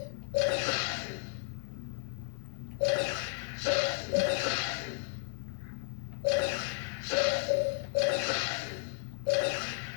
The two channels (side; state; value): right; silent; digital silence